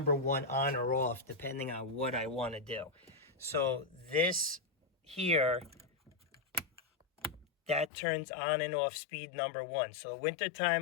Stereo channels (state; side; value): drops out; right; at 7.9 s